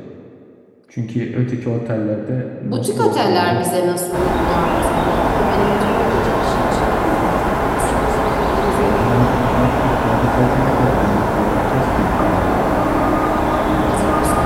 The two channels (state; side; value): identical; both; correlation 1.00